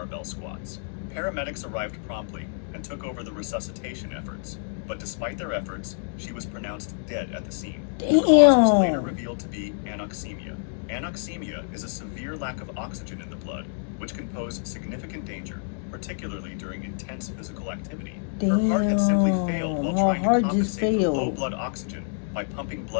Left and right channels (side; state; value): right; silent; digital silence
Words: squats. Paramedics arrived promptly and took over the resuscitation efforts, but despite their efforts, she was pronounced dead at the scene. The cause was later revealed to be anoxemia. Anoxemia is a severe lack of oxygen in the blood, which can pose significant danger, particularly during intense physical activity. Her heart had simply failed while trying to compensate for low blood oxygen by pumping